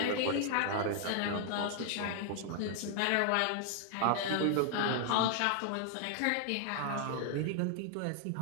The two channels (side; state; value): both; different; correlation 0.00